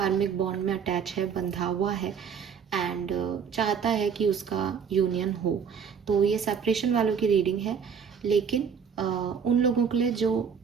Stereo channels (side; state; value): left; quieter; 6.9 dB